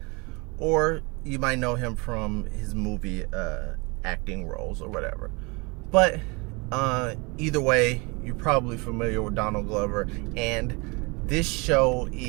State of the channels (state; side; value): quieter; left; 28.5 dB